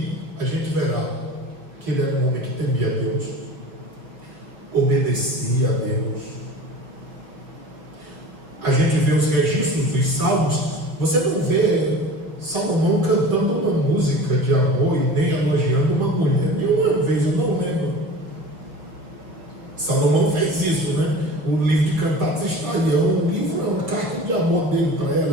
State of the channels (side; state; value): left; late; 5.6 ms